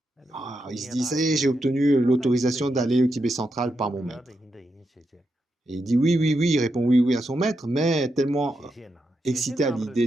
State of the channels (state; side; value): normal; both; correlation 0.85